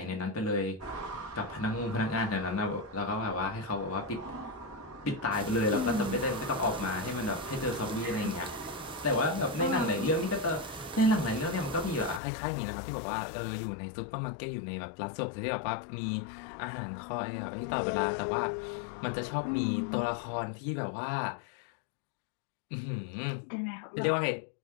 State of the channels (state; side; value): drops out; right; at 12.2 s